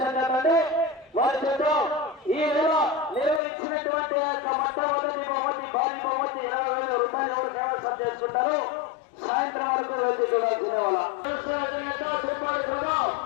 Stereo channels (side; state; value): right; drops out; at 3.4 s